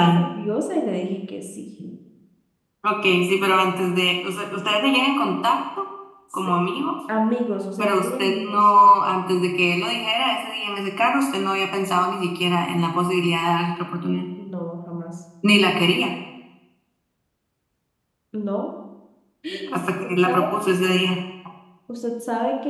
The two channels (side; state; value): both; identical; correlation 1.00